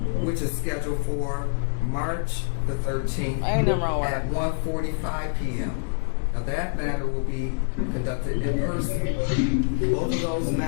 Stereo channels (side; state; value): right; silent; digital silence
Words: which is scheduled for March the 13th Ain't nothing wrong with at that. 1:45 p.m. Now that matter will be conducted in person. Both of those